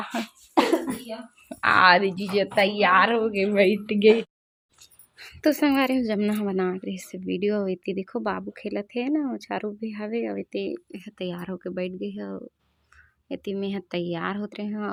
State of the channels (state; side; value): identical; both; correlation 1.00